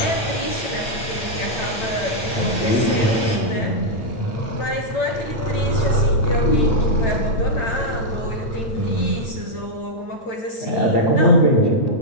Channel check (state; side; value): late; right; 8.9 ms